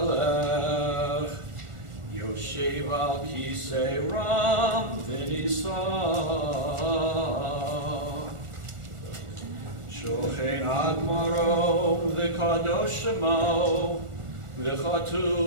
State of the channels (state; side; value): late; left; 1.4 ms